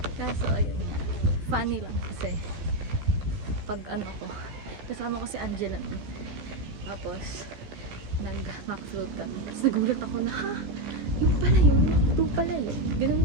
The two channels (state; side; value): late; left; 14 ms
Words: Kaso ayun nga. Funny lang kasi pag ano ko, kasama ko si Angela nun. Tapos nag-mac float kami. Tapos nagulat ako na, ha? Yung pala yun? McDo pala yun?